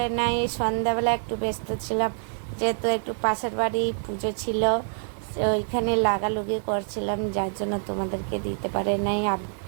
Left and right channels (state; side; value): silent; left; digital silence